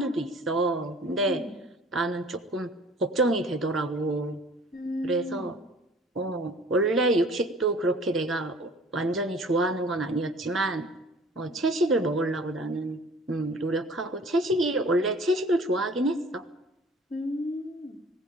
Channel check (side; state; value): both; normal; correlation 0.49